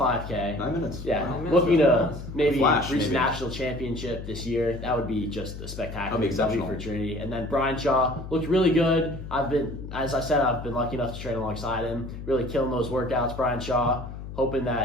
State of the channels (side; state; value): left; noise; hum, 10 dB below the sound